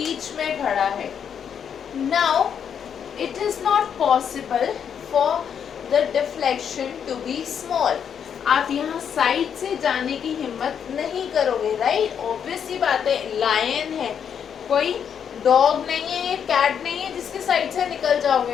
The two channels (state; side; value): quieter; right; 7.9 dB